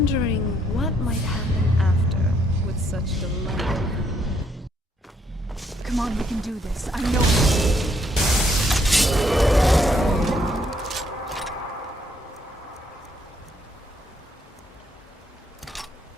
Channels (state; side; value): normal; both; correlation 0.71